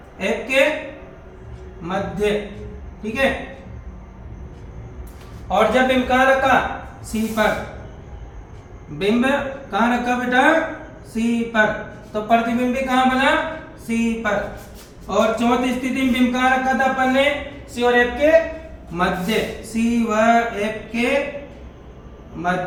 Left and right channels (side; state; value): both; identical; correlation 1.00